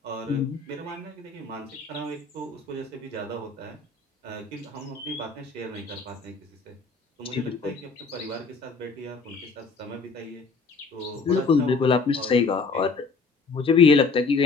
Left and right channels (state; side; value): quieter; right; 4.4 dB